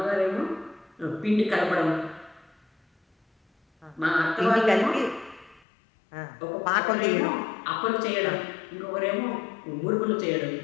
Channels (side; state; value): right; drops out; at 5.6 s